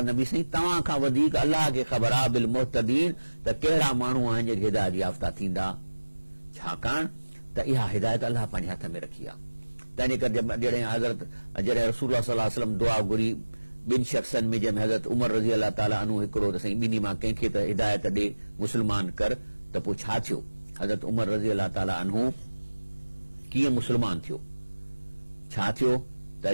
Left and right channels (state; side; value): inverted; both; correlation -1.00